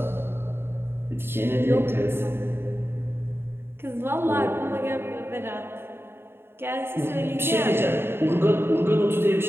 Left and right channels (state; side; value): late; left; 0.11 ms